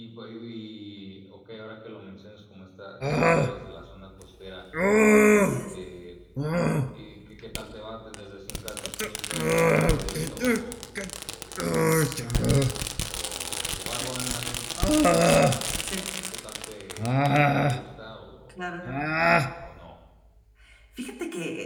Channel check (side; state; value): both; identical; correlation 1.00